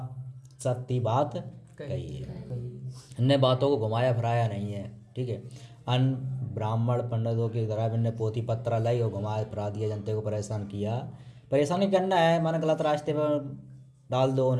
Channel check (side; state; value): both; identical; correlation 1.00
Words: सत्य बात कही है, अन्य बातों को घुमाया फिराया नहीं है। ठीक है, अन्य ब्राह्मण पंडितों की तरह इनने पोथी पत्रा लाई और घुमाया फिरा दिया, जनता को परेशान किया। परेशान नहीं करना है, माना गलत रास्ते पर डाल दो